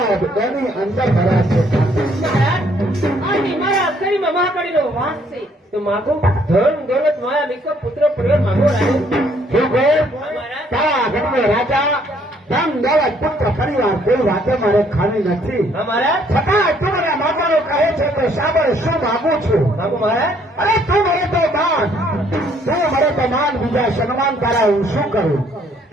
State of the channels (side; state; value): both; normal; correlation 0.65